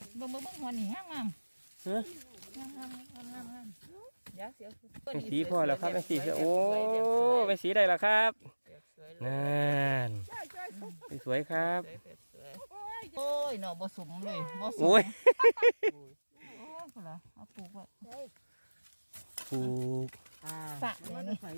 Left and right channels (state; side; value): inverted; both; correlation -1.00